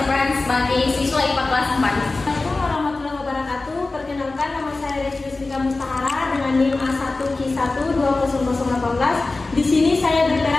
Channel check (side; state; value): right; quieter; 3.4 dB